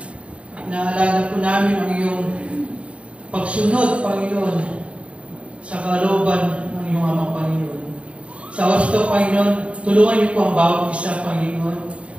Inaalala po namin ang iyong pagsunod, Panginoon, sa kalooban ng iyong Amang Panginoon. Sa oras ito, Panginoon, tulungan niyo po ang bawat isa, Panginoon,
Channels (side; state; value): left; late; 0.062 ms